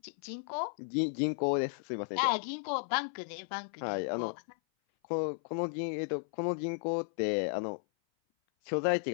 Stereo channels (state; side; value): silent; right; 55 dB below the other